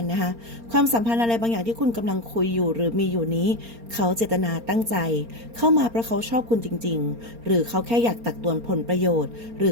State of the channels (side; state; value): left; late; 4.3 ms